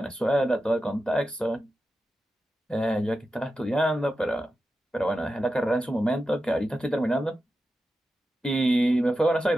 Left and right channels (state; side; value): normal; both; correlation 0.91